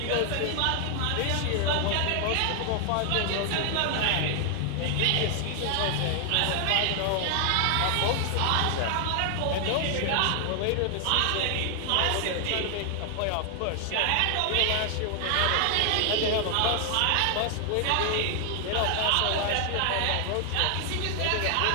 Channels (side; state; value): both; different; correlation 0.00